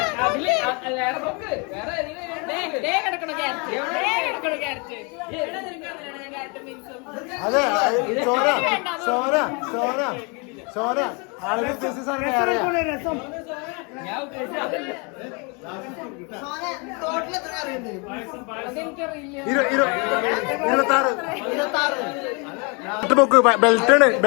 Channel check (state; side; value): quieter; right; 32.3 dB